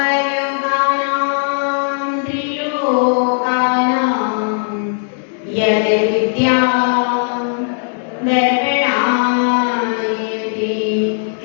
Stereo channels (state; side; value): silent; right; digital silence